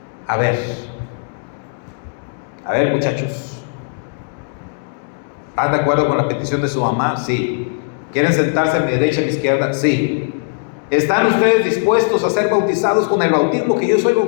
a ver muchachos, ¿están de acuerdo con la petición de su mamá? Sí. ¿Quieren sentarse a mi derecha y a mi izquierda? Sí. ¿Están ustedes dispuestos a ser bautizados con el bautismo que yo soy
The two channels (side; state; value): right; silent; digital silence